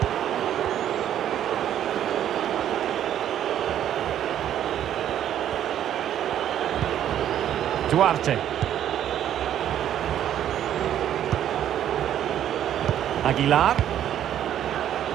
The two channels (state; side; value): quieter; left; 10.8 dB